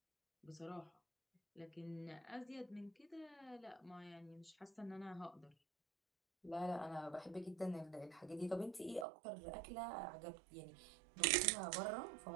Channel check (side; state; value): left; drops out; at 9.1 s